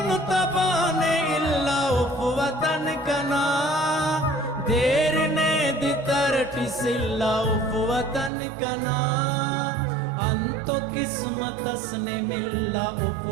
तबाने इल्ला उफ वतन कना देर ने दितरटी सिल्ला उफ वतन कना अंतो किस्मत असने मिल्ला उफ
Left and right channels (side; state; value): left; drops out; at 8.3 s